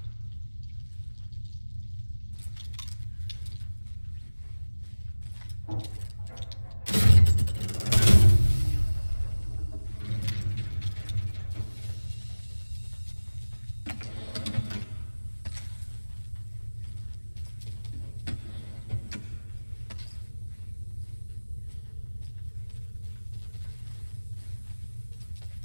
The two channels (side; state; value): both; inverted; correlation -1.00